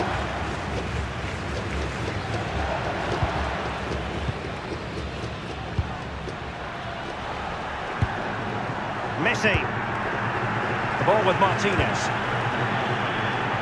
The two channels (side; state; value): both; identical; correlation 1.00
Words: Messi. The ball with Martinez.